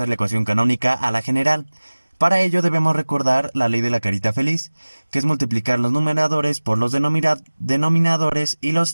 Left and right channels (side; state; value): both; inverted; correlation -1.00